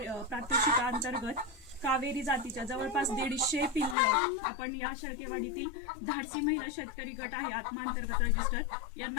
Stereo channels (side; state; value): right; drops out; at 4.0 s